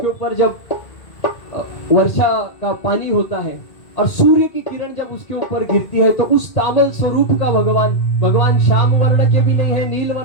ऊपर जब वर्षा का पानी होता है और सूर्य की किरण जब उसके ऊपर गिरती है, तो उस तामल स्वरूप का भगवान श्याम वर्ण के भी नहीं है, नील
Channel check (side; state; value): right; late; 2.3 ms